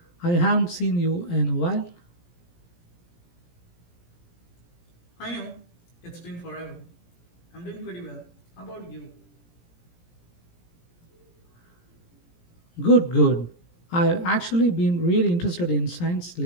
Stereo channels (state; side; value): late; right; 17 ms